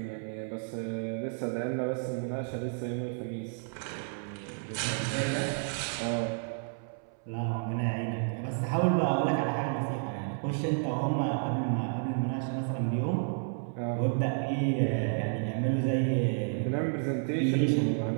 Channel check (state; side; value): silent; left; 57 dB below the other